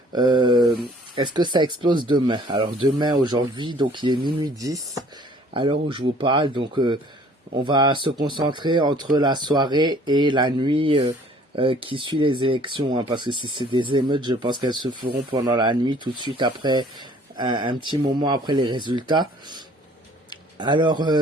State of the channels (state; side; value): normal; both; correlation 0.55